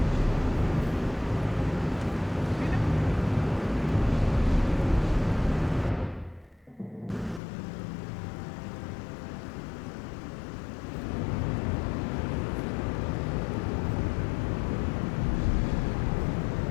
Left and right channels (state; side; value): drops out; right; at 7.4 s